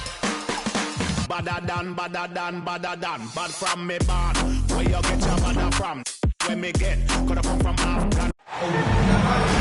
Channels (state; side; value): identical; both; correlation 1.00